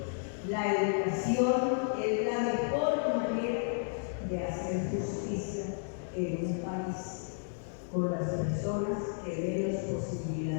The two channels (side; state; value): right; silent; digital silence